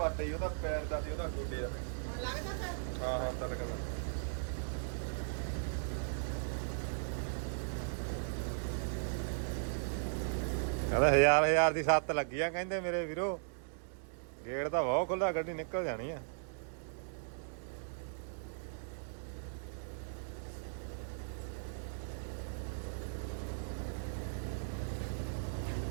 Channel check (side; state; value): left; silent; digital silence